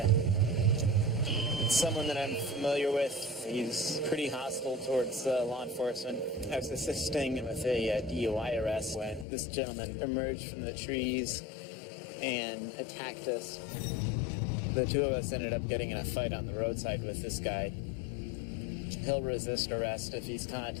It's someone that I'm familiar with. He's pretty hostile towards law enforcement. I was assisting with a DUI arrest when this gentleman emerged from the trees and attacked us. The two of us ended up getting in a fight on the roadside with this guy. He'll resist arrest if he's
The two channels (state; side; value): drops out; right; at 9.2 s